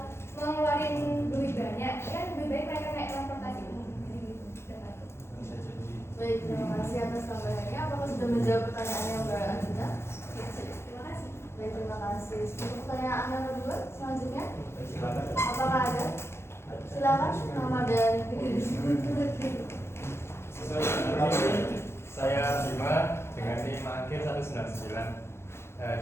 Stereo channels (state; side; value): late; right; 0.12 ms